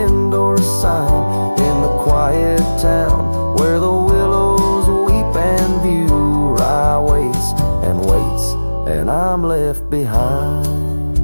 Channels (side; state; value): both; inverted; correlation -1.00